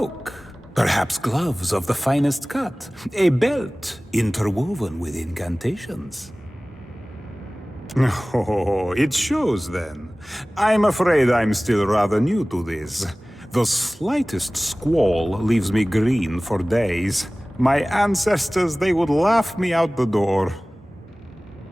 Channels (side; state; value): both; normal; correlation 0.98